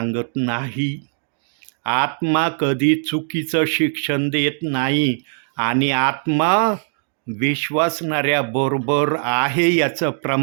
नाही, आत्मा कधी चुकीचं शिक्षण देत नाही आणि आत्मा विश्वासणाऱ्या बरोबर आहे याचं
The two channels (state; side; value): silent; left; digital silence